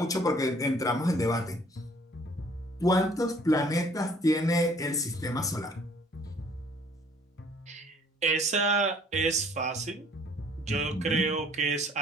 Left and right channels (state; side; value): normal; both; correlation 0.58